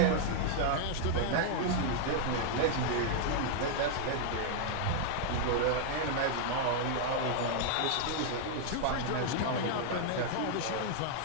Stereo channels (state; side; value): different; both; correlation -0.01